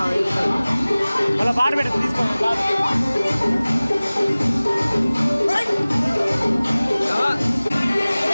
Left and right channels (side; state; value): both; inverted; correlation -0.99